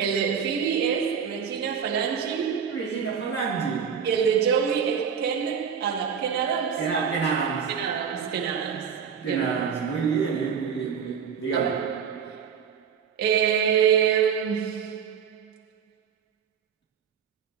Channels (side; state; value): left; quieter; 7.2 dB